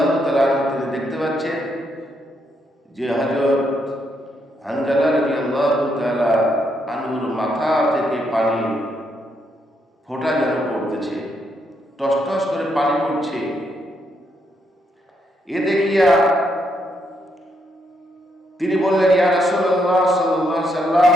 তাআলা আনহু তিনি দেখতে পাচ্ছেন যে হযরত হানজালা রাদিয়াল্লাহু তাআলা আনহুর মাথা থেকে পানি ফোঁটা যেন পড়তেছে, টস টস করে পানি পড়ছে। এ দেখিয়া তিনি বললেন, ইয়া রাসূলুল্লাহ সাল্লাল্লাহু আলাইহি সাল্লাম,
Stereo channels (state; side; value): normal; both; correlation 0.77